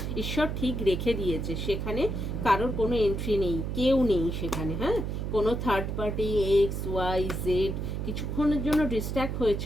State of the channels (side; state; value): right; noise; hum, 3 dB below the sound